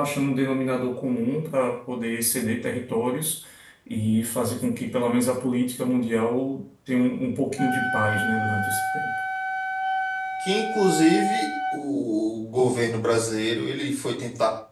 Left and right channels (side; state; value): both; identical; correlation 1.00